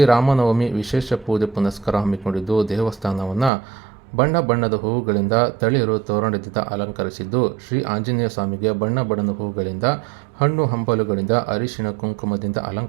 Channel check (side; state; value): left; drops out; at 3.5 s